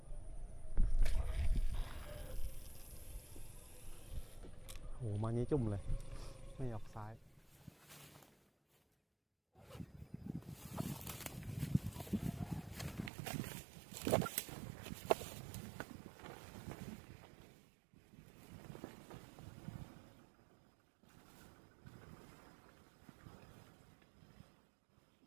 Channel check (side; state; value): left; drops out; at 13.1 s